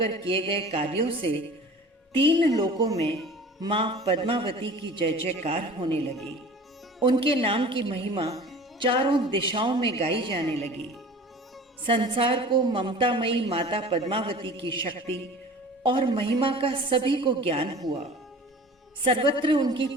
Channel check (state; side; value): normal; both; correlation 0.42